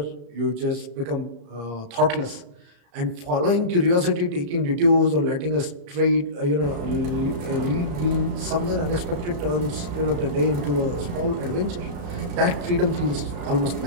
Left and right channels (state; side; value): late; left; 34 ms